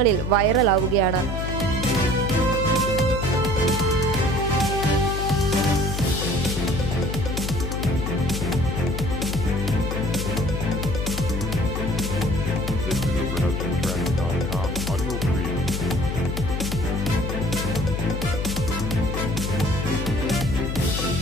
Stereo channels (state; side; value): noise; left; hum, 3 dB below the sound